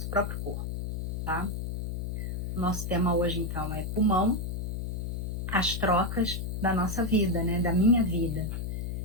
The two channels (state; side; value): noise; left; hum, 3 dB below the sound